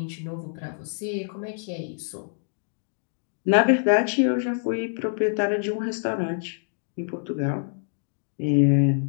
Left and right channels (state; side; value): silent; right; digital silence